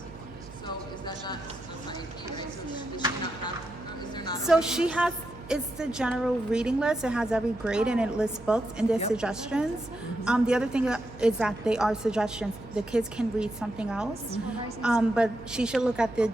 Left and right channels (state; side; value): noise; right; hum, 17 dB below the sound